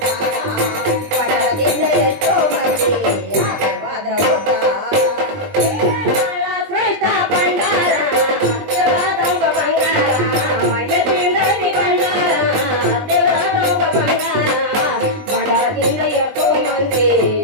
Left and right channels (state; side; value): late; left; 20 ms